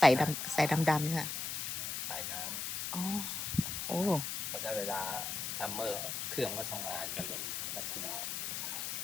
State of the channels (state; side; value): noise; left; hiss, 3 dB below the sound